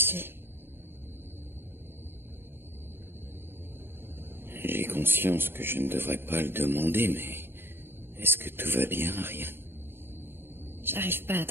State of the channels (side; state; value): left; late; 0.11 ms